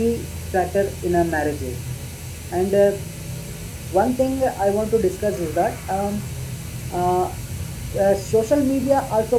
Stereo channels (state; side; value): identical; both; correlation 1.00